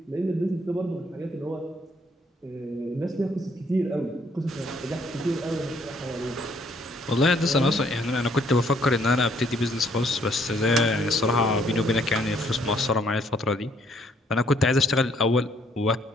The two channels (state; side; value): normal; both; correlation 0.66